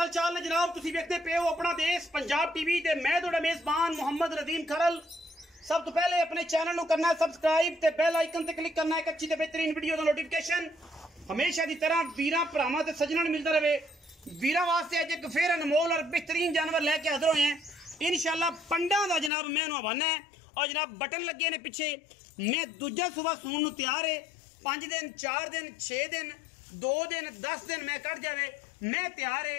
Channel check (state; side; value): drops out; right; at 19.3 s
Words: चाल ने जनाब तुसी देखते पे हो अपना देश पंजाब टीवी ते मैं तुहाडा मेजबान मोहम्मद रदीम खरल। सब तो पहले अपने चैनल को करना है सबसक्राइब ते बेल आइकन ते क्लिक करना है एक अच्छी ते बेहतरीन वीडियो दा नोटिफिकेशन हमेशा की तरह वीरां भरावां ते सज्जणां मिलता रहे। वीरां वास्ते अज एक फिर अनमोल और बेहतरीन जानवर लैके हाजिर होए हैं इंशाल्लाह। पंडा दा जनाब मैं हवाना है और जनाब बटन लगे ने पिछे। मैं दूजा सुबह सून नूं तैयार है। 5 दिन 4 दिन 6 दिन 2 दिन 10 दिन मैं कट जावे मैं तैयार है।